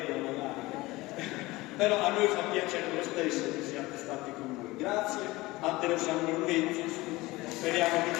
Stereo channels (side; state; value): right; quieter; 20.5 dB